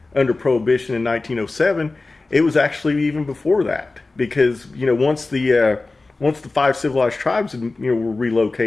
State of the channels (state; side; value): quieter; right; 3.4 dB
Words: under prohibition in 1907, it was actually even before that, because once the 5 civilized tribes were